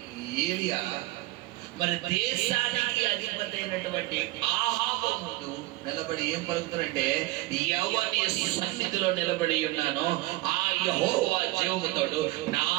ఏలియా మరి దేశానికి అధిపతి అయినటువంటి ఆహాబు ముందు నిలబడి ఏం పలుకుతారంటే, ఎవరి సన్నిధిలో నిలబడి ఉన్నానో ఆ యెహోవా జీవముతోడు నా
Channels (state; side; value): quieter; left; 19.4 dB